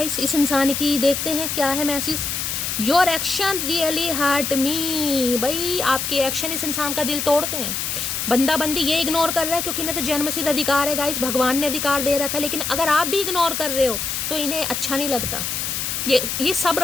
इस इंसान की। देखते हैं क्या है message. Your action really hurt me. भाई आपके एक्शन इस इंसान का दिल तोड़ते हैं। बंदा बंदी ये इग्नोर कर रहा है क्योंकि इन्हें तो जन्मसिद्ध अधिकार है गाइस, भगवान ने अधिकार दे रखा है। लेकिन अगर आप भी इग्नोर कर रहे हो तो इन्हें अच्छा नहीं लगता। ये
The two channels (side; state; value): left; noise; hiss, 2 dB below the sound